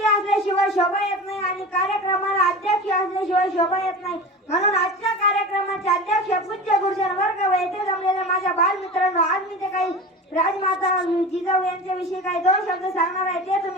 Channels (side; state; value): both; normal; correlation 0.31